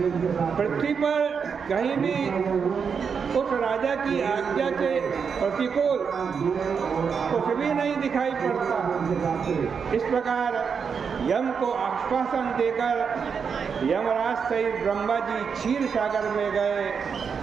पृथ्वी पर कहीं भी उस राजा की आज्ञा के प्रतिकूल कुछ भी नहीं दिखाई पड़ता। इस प्रकार यम को आश्वासन देकर यमराज सहित ब्रह्मा जी क्षीर सागर में गए।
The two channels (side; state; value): left; quieter; 6.2 dB